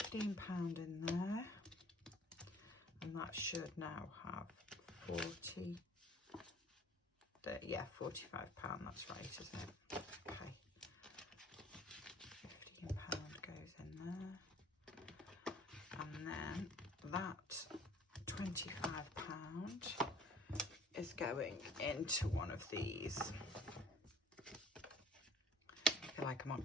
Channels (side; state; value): both; normal; correlation 0.51